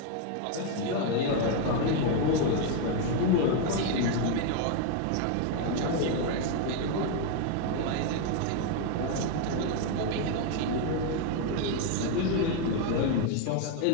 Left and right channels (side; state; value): both; different; correlation 0.01